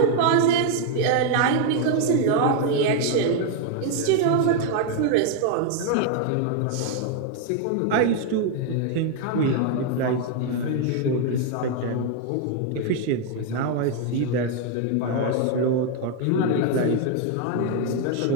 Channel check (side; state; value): both; different; correlation 0.00